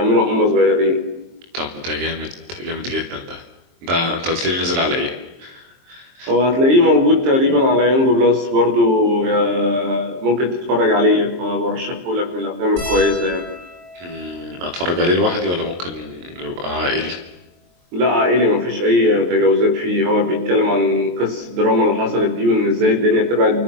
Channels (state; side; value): late; left; 23 ms